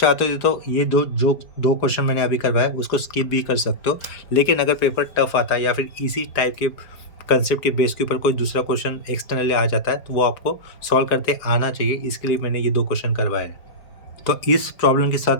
हो तो ये दो क्वेश्चन मैंने अभी करवाया उसको स्किप भी कर सकते हो, लेकिन अगर पेपर टफ आता है या फिर इसी टाइप के कंसेप्ट के बेस के ऊपर कोई दूसरा क्वेश्चन एक्सटर्नली आ जाता है तो वो आपको सॉल्व करते आना चाहिए, इसके लिए मैंने ये 2 क्वेश्चन करवाए हैं। तो इस प्रॉब्लम के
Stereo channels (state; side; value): late; right; 4.8 ms